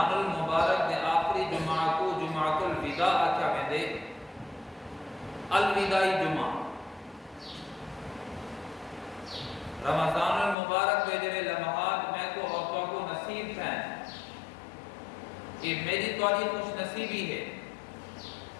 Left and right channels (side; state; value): right; drops out; at 10.6 s